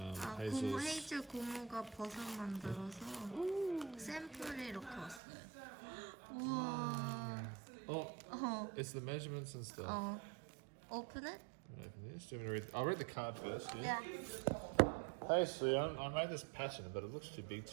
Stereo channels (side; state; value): left; drops out; at 5.2 s